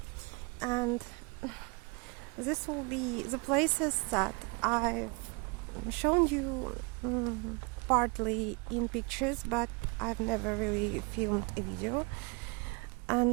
and this will be the places that I've shown you partly in pictures, but I've never really filmed a video.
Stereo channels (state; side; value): quieter; left; 30.6 dB